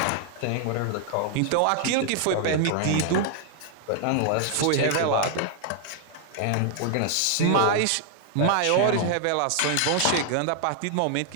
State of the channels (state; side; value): different; both; correlation 0.00